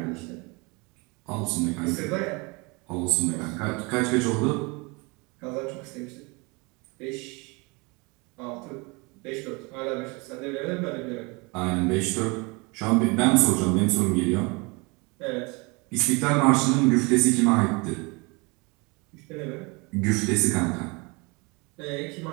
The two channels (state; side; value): quieter; left; 28.0 dB